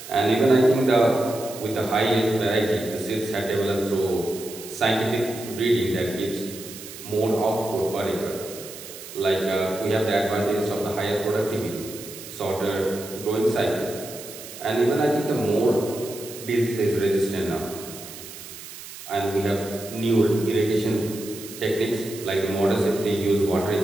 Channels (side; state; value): right; noise; hiss, 13 dB below the sound